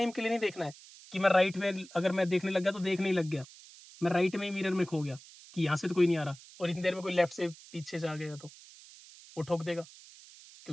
के लिए नहीं देखना है कि मैं राइट में अगर मैं देखने लग गया तो देखने ही लग गया, मैं राइट में ही मिरर में खो गया कि यहाँ से तो कोई नहीं आ रहा, और इतनी देर में कोई लेफ्ट से पीछे से आ गया तो वो ठोक देगा,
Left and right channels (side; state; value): right; noise; hiss, 20 dB below the sound